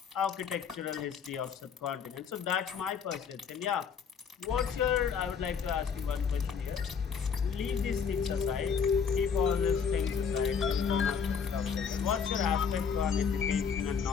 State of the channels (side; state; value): right; quieter; 6.5 dB